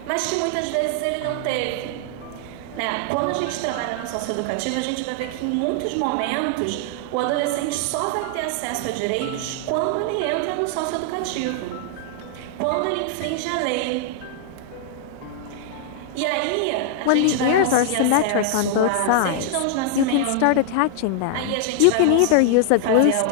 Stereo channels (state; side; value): different; both; correlation 0.00